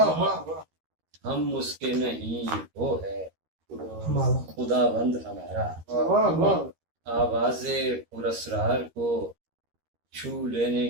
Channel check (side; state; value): left; late; 13 ms